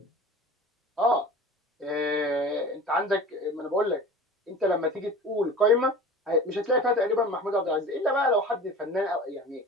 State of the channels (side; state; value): both; normal; correlation 0.38